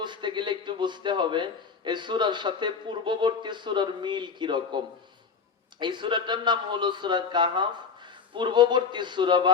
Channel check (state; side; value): quieter; right; 5.7 dB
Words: গেলে একটু বুঝতে হবে এই সূরার সাথে পূর্ববর্তী সূরার মিল কি রকম। এই সূরাটার নাম হলো সূরা কাহাফ, পূর্ববর্তী সূরা